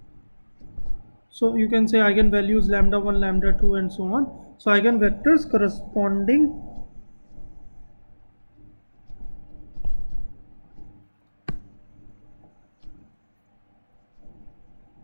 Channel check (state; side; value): inverted; both; correlation -1.00